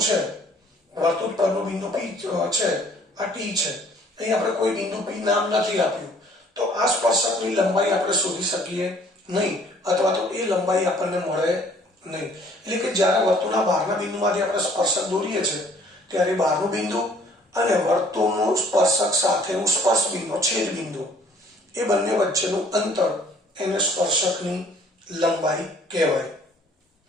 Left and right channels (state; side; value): normal; both; correlation 0.58